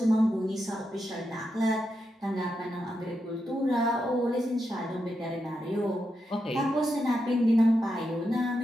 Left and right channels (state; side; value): normal; both; correlation 0.85